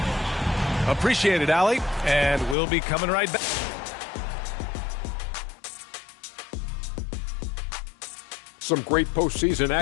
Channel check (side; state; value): right; drops out; at 2.6 s